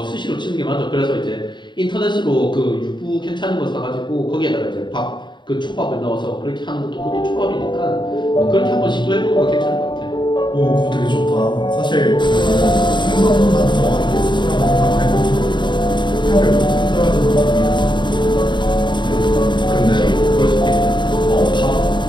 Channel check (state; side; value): late; right; 0.22 ms